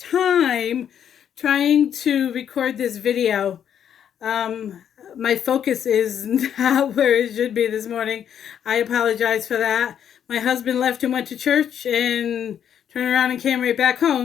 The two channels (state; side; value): quieter; right; 9.0 dB